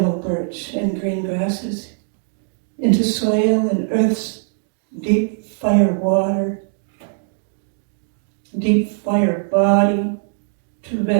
birch and green grasses, into soil and earth's deep fire water, deep fire body, to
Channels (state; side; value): silent; left; digital silence